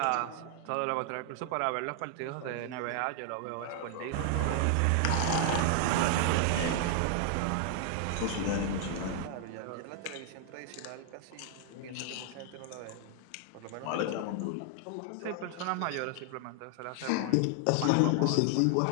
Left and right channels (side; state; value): both; different; correlation 0.00